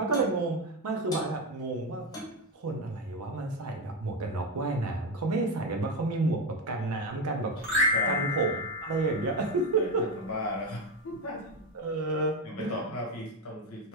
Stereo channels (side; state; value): both; normal; correlation 0.13